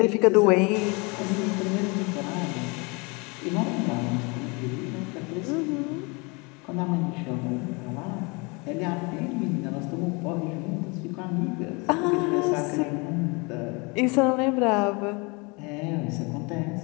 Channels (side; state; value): right; quieter; 29.0 dB